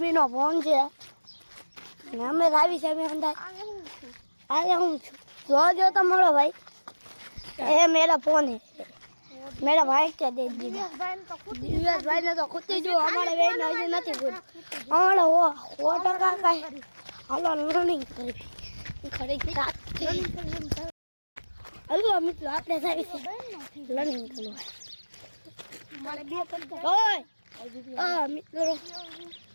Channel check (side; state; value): both; inverted; correlation -1.00